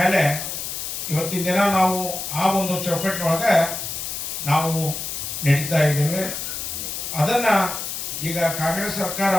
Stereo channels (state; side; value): noise; left; hiss, 5 dB below the sound